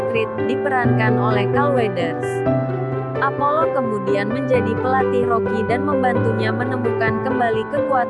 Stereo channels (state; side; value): identical; both; correlation 1.00